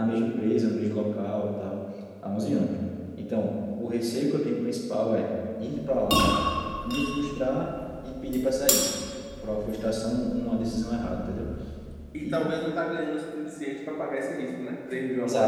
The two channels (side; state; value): both; identical; correlation 1.00